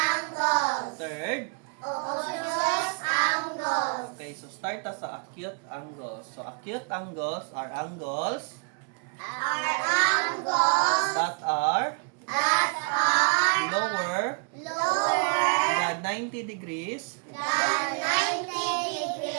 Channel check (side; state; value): left; quieter; 38.4 dB